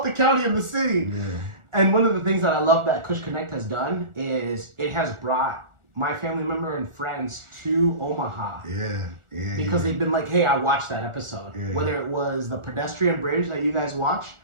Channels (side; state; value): left; late; 1.4 ms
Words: the county and the city. Yeah. And one of the things that I love that Kush Konnect has done is it has brought my family member and friends to Omaha. Yeah. Because they've been like, hey, I watched that episode. Yeah. Whether it was the pedestrian bridge that you guys watched,